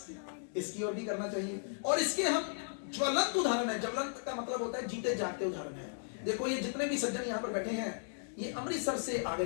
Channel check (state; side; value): silent; right; digital silence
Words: इसकी ओर भी करना चाहिए, और इसके हम ज्वलंत उदाहरण है। ज्वलंत का मतलब होता है जीते जागते उदाहरण है। देखो ये जितने भी सज्जन यहाँ पर बैठे हैं, ये अमृतसर से आ